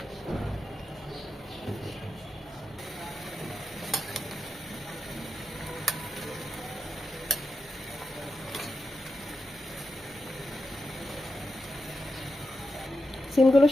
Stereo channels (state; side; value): normal; both; correlation 0.89